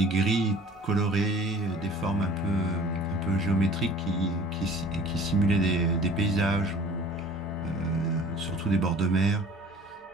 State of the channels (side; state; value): both; normal; correlation 0.47